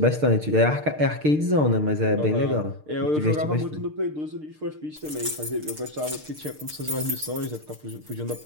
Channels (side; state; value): left; late; 6.6 ms